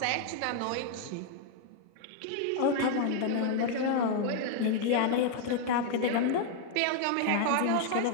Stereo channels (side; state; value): both; different; correlation 0.00